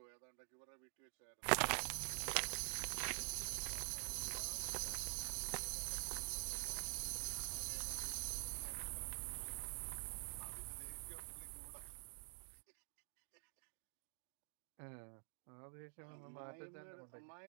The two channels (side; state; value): left; silent; digital silence